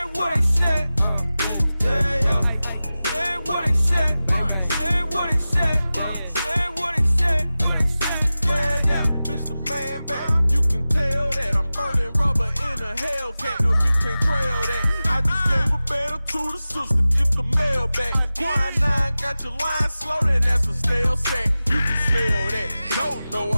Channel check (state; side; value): inverted; both; correlation -0.96